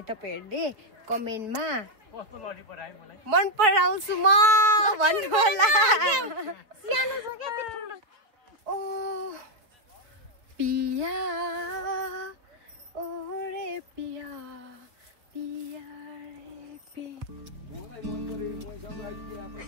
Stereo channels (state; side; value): late; left; 4.2 ms